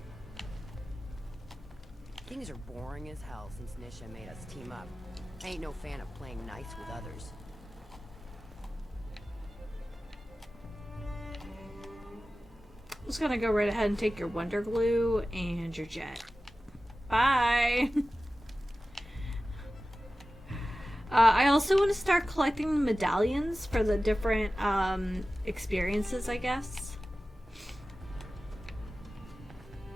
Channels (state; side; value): normal; both; correlation 0.95